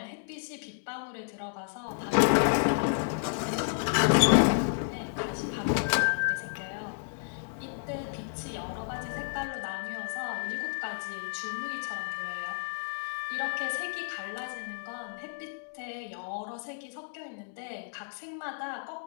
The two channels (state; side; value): silent; right; digital silence